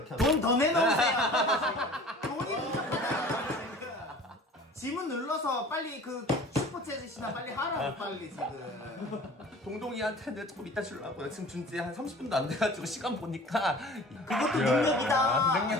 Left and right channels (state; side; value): normal; both; correlation 0.44